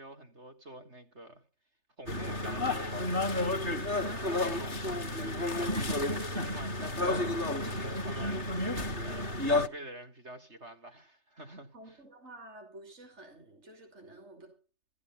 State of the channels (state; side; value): late; left; 3.3 ms